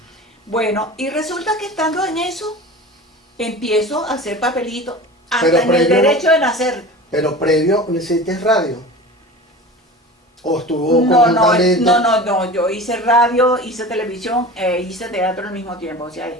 Bueno, y resulta que estando en eso, empiezo a hacer papelitos, Pero hasta en el previo- derecho de nacer. Pero previo, ¿no hiciste radio? ¿O estuvo No, conjuntamente? no, yo hice radio, hice televisión, hice teatro al mismo tiempo, o sea,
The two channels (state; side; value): normal; both; correlation 0.35